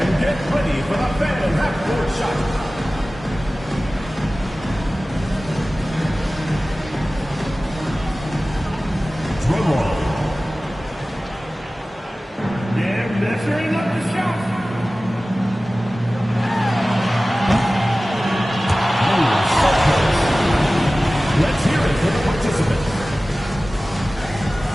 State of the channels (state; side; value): normal; both; correlation 0.97